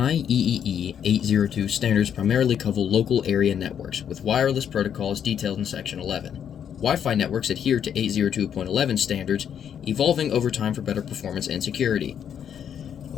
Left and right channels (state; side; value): quieter; right; 8.7 dB